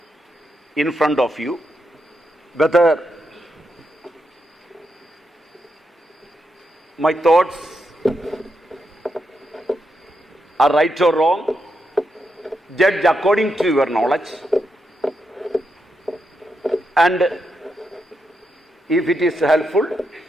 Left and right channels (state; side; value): normal; both; correlation 0.83